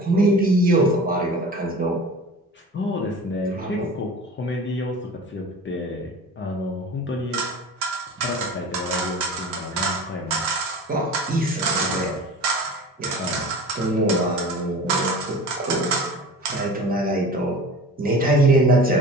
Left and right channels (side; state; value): both; normal; correlation 0.37